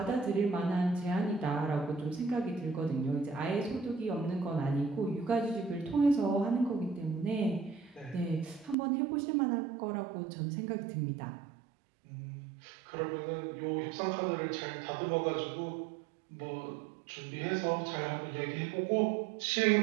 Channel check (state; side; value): drops out; left; at 8.8 s